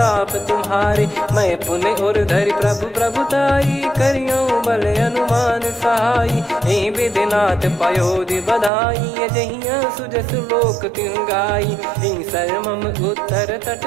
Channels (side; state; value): left; drops out; at 8.7 s